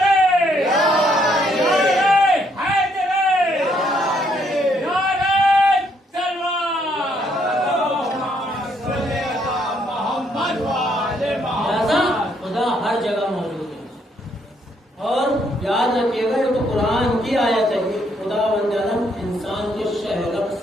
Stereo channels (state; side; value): normal; both; correlation 0.71